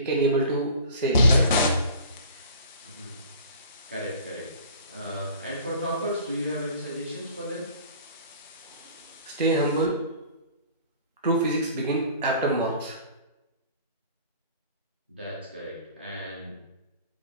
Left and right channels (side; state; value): both; inverted; correlation -0.45